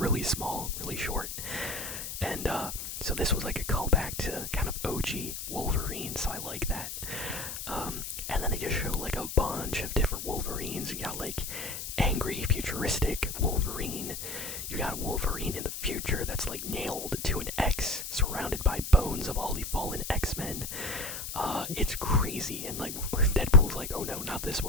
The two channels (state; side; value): noise; left; hiss, 7 dB below the sound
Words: small, really short, and so this was like a callback to kind of OG Wolverine, so I like that. And then they just show like a bunch of different Wolverines. You got like angry, futuristic Wolverine. You got Wolverine in the future that's like nailed to an X, surrounded by bones of all the fallen X-Men. It's crazy, and like Deadpool's like, oh no, not this